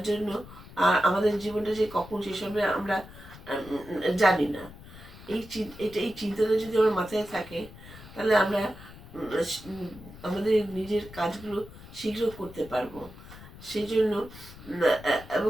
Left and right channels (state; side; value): noise; left; rumble, 17 dB below the sound